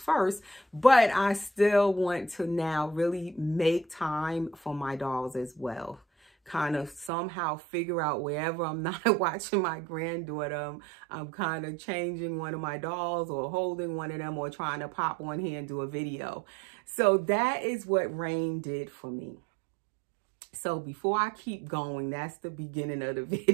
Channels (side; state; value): left; drops out; at 7.1 s